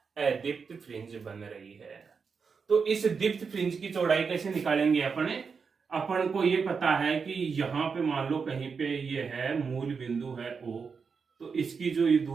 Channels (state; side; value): quieter; left; 5.5 dB